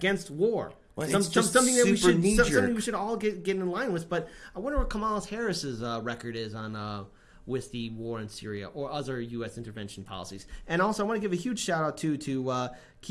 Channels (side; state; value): both; identical; correlation 1.00